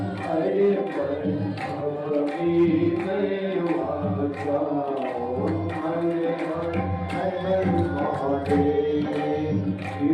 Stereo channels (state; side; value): identical; both; correlation 1.00